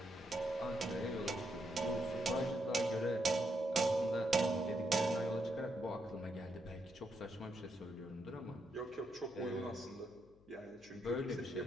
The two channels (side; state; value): left; noise; hum, 28 dB below the sound